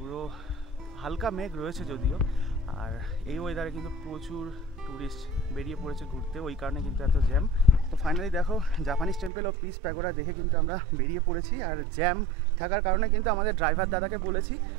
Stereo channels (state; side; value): drops out; left; at 9.3 s